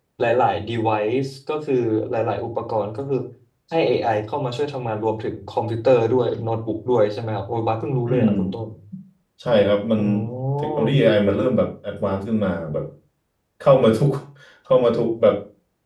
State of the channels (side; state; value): both; identical; correlation 1.00